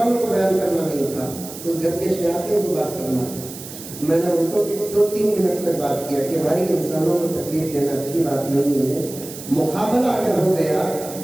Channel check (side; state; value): right; noise; hiss, 13 dB below the sound